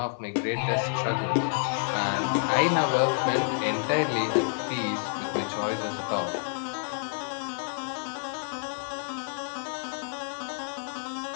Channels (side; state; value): right; silent; 59 dB below the other